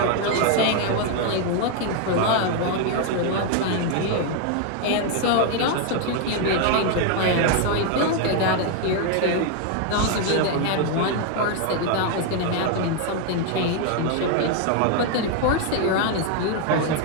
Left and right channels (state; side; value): different; both; correlation 0.01